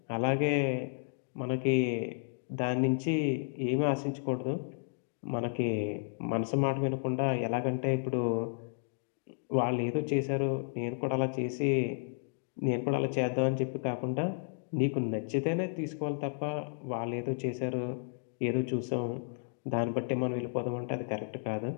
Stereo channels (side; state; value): right; silent; digital silence